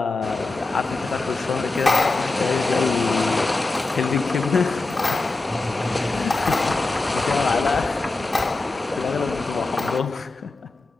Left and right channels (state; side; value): quieter; right; 3.4 dB